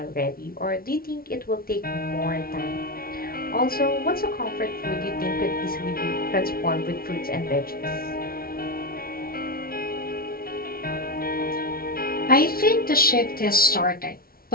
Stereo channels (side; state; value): right; late; 0.43 ms